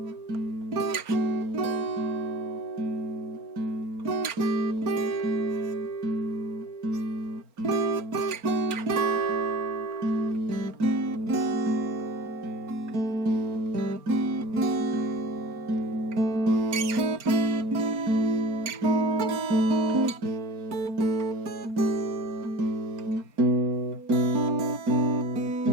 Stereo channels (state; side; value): late; left; 4.3 ms